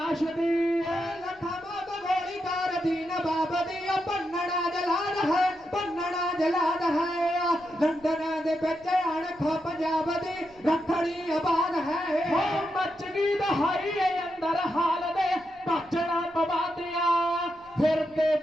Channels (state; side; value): noise; left; rumble, 28 dB below the sound